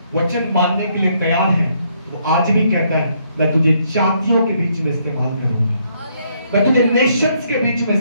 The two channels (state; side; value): inverted; both; correlation -0.71